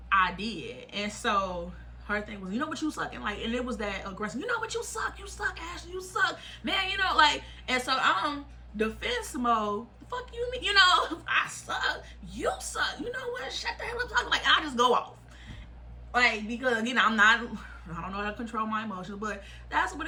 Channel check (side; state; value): both; identical; correlation 1.00